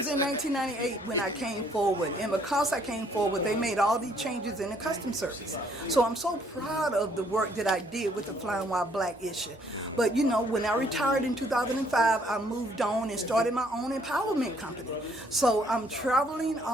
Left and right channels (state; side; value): normal; both; correlation 0.65